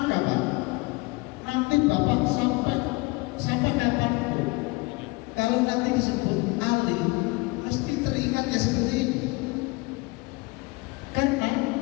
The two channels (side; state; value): right; quieter; 25.2 dB